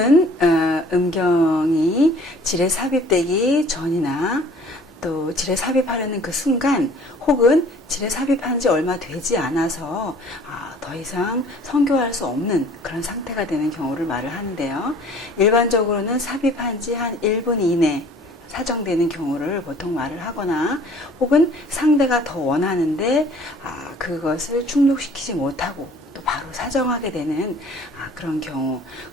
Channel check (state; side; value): normal; both; correlation 0.52